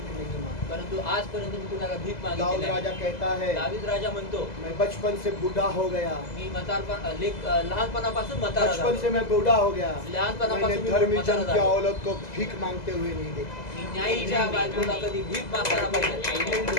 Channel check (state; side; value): late; right; 2.0 ms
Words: नहीं मांगी। परंतु आजपर्यंत मी कुणाला भीक दाऊद मागितली नाही. राजा कहता है दावीद राजा म्हणतो मैं बचपन से बूढ़ा हो गया, मी लहानपणापासून म्हातारा बचपन झालो. से मैं बूढ़ा हो गया, लहानपणापासून मैंने मी धर्मी म्हातारा जन की झालो. औरत को भीख मांगते हुए नहीं देखा। मी न्यायीच्या बायकोला कधी भीक मागताना पाहिजे.